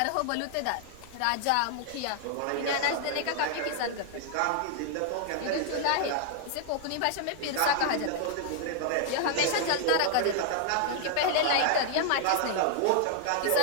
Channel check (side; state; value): both; different; correlation 0.00